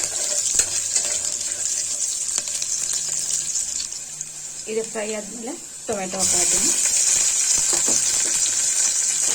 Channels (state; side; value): identical; both; correlation 1.00